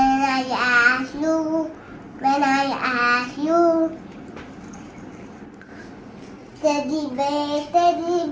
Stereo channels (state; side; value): identical; both; correlation 1.00